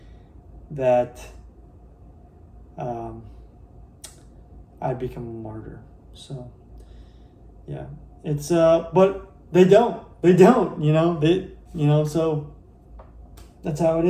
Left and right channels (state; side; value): identical; both; correlation 1.00